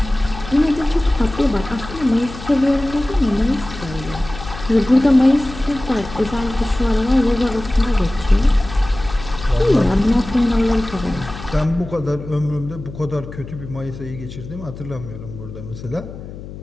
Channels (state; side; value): noise; left; hum, 13 dB below the sound